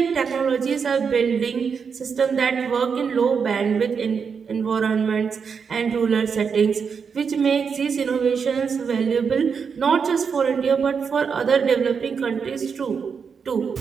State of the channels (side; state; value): left; quieter; 6.1 dB